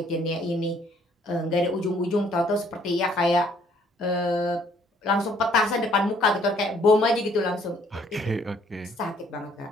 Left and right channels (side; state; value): both; normal; correlation 0.63